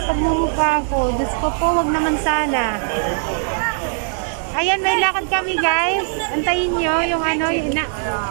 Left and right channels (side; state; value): left; silent; digital silence